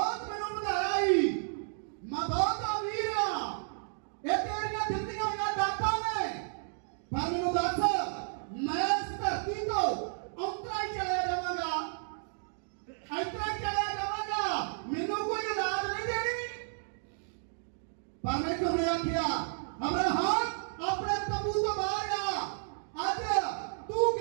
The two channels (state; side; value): silent; left; digital silence